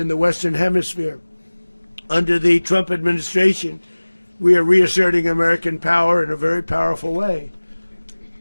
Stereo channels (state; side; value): inverted; both; correlation -1.00